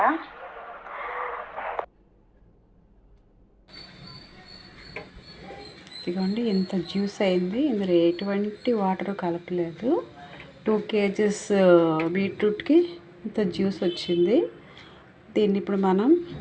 ఇదిగోండి ఇంత జ్యూస్ అయింది. ఇందులో ఎటువంటి వాటర్ కలపలేదు. 2 kgs బీట్రూట్కి ఇంత జ్యూస్ వచ్చింది. దీన్ని ఇప్పుడు మనం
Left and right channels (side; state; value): both; identical; correlation 1.00